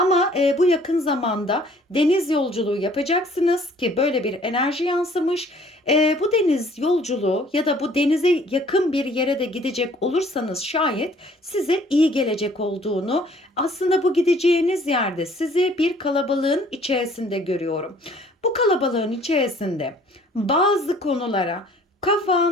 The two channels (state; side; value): normal; both; correlation 0.57